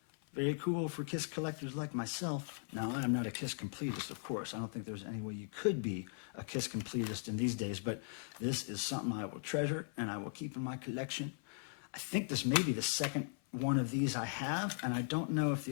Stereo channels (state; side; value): silent; right; 52 dB below the other